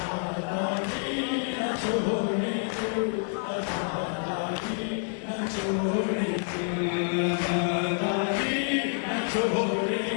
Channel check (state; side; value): silent; right; 59 dB below the other